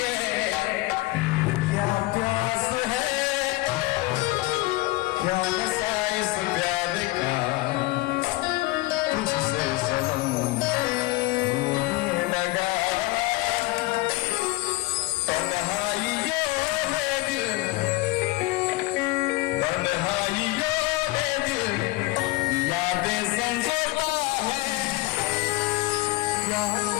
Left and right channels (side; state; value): right; quieter; 20.6 dB